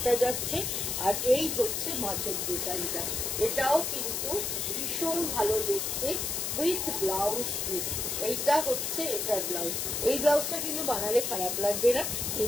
যাচ্ছে, আর এই হচ্ছে মাছের ডিজাইনটা। এটাও কিন্তু ভীষণ ভালো দেখতে উইথ ব্লাউজ পিস। এইটা হচ্ছে এটার ব্লাউজ। এই ব্লাউজটা কিন্তু বানালে খারাপ লাগবে না।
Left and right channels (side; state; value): left; noise; hiss, 1 dB below the sound